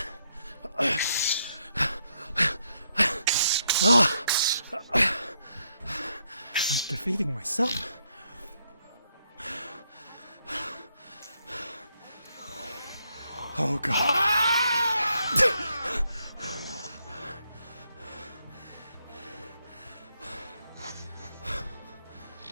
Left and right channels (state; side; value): inverted; both; correlation -0.76